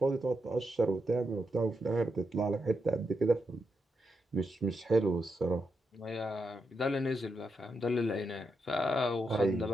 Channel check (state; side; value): normal; both; correlation 0.84